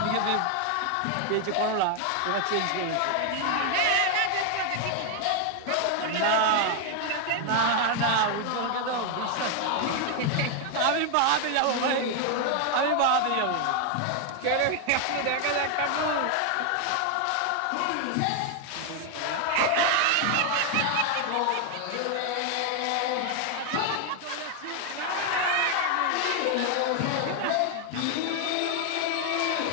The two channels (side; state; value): both; different; correlation 0.00